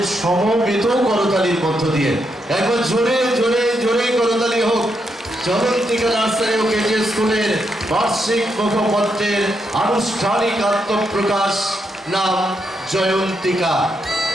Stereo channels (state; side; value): normal; both; correlation 0.81